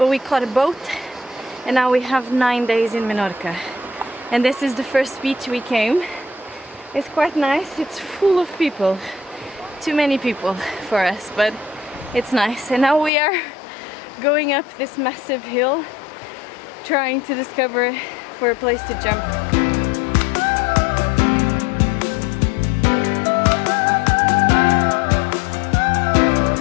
we caught a boat and now we have 9 days in Menorca. And this is the first beach we came. It's quite nice, it's full of people. Too many people for us, but it's nice. And now we are going up this massive hill, trying to discover for a place to jump.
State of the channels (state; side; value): drops out; right; at 13.1 s